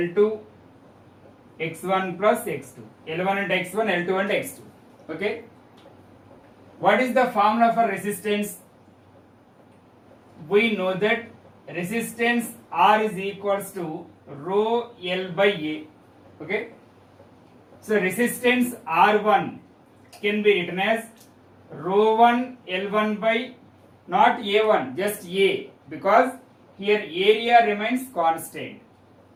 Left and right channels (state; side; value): identical; both; correlation 1.00